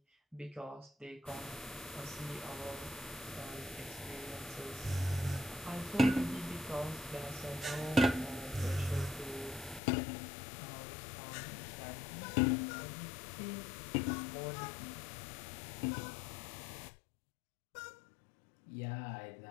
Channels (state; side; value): drops out; right; at 9.8 s